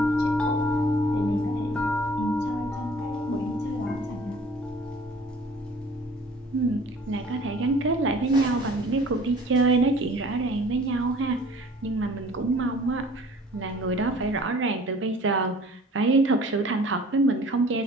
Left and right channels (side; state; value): both; normal; correlation 0.50